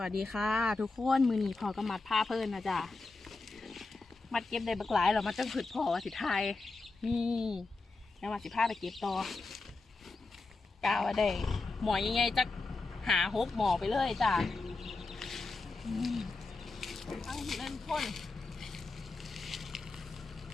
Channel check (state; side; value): quieter; right; 3.6 dB